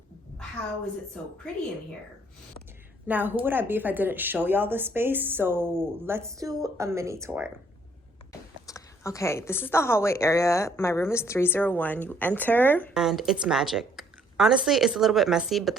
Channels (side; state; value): both; normal; correlation 0.64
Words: how is it so pretty in here? Now, who would I be if I didn't show y'all the space? So let's do a mini tour. Okay, this is the hallway area. My room is 301. You enter and it's magic. Honestly, it's a little bit messy, but